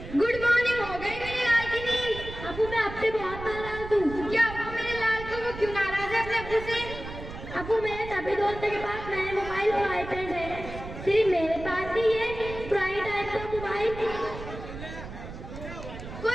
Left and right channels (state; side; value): noise; right; rumble, 11 dB below the sound